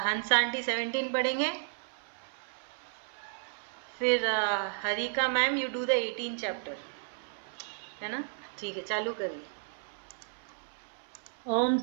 हंस आंटी 17 पढ़ेंगे, फिर Harika ma'am you do the 18 chapter, है ना? ठीक है, चालू करिए। ओम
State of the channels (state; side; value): silent; left; 56 dB below the other